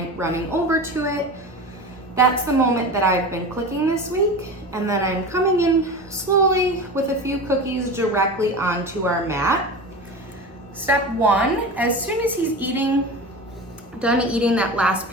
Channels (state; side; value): normal; both; correlation 0.30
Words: over to it, that's the moment that I've been clicking this week. And then I'm coming in slowly with a few cookies directly onto our mat. Step 1, as soon as he's done eating that last